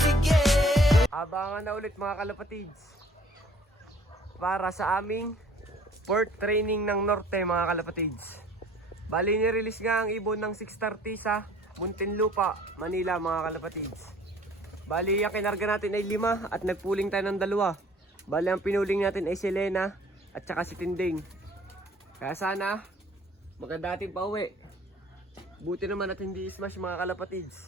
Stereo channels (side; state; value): both; normal; correlation 0.54